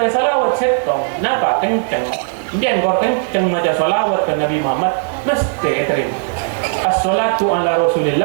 salawat setong, napa kenceng. Biar kau kenceng macam salawat ke Nabi Muhammad, mesti terima. As-salatu ala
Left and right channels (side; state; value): left; silent; digital silence